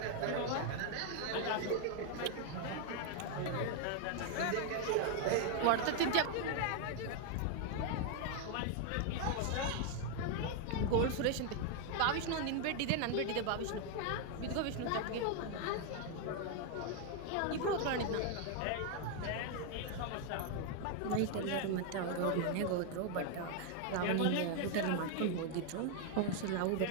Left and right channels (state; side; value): different; both; correlation 0.00